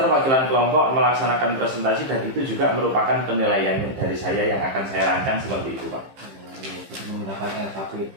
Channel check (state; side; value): late; left; 15 ms